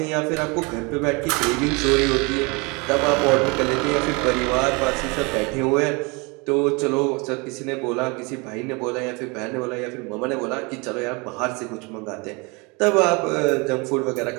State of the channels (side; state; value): left; quieter; 28.7 dB